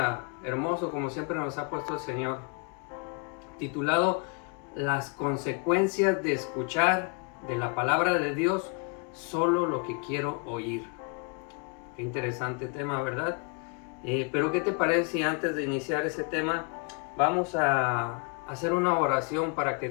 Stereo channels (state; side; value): quieter; right; 35.7 dB